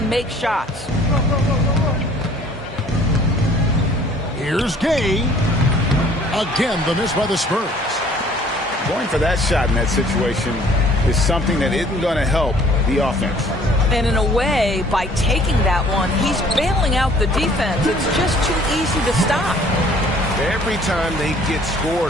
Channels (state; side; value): normal; both; correlation 0.55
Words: make shots. Here's Gay. Again, the miss by the Spurs. Going for that shot in that situation is something that isn't going to help the offense. And in a way, by taking that one, he's bailing out the defense. It's just too easy to stop. Every time they get